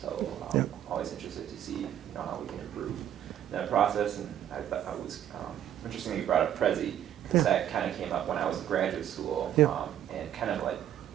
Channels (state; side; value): quieter; left; 10.8 dB